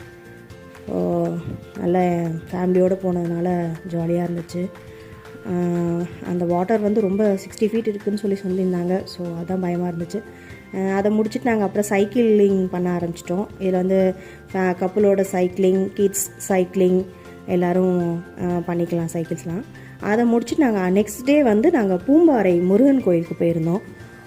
ஸோ நல்ல ஃபேமிலியோடு போனதுனால ஜாலியாக இருந்துச்சு. அந்த வாட்டர் வந்து ரொம்ப 60 ஃபீட் இருக்குதுன்னு சொல்லியிருந்தாங்க. ஸோ அதுதான் பயமாக இருந்துச்சு. அதை முடிச்சுட்டு நாங்கள் அப்புறம் சைக்கிளிங் பண்ண ஆரம்பிச்சிட்டோம். இதில் வந்து கப்புளோட சைக்கிளிங், கிட்ஸ் சைக்கிளிங் எல்லோரும் பண்ணிக்கலாம் சைக்கிள்ஸ்லாம். அதை முடிச்சுட்டு நாங்கள் நெக்ஸ்ட் டே வந்து நாங்கள் பூம்பாறை முருகன் கோயிலுக்கு போயிருந்தோம்.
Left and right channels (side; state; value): both; identical; correlation 1.00